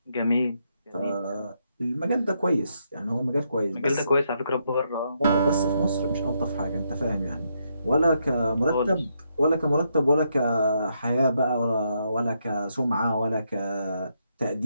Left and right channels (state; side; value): inverted; both; correlation -0.78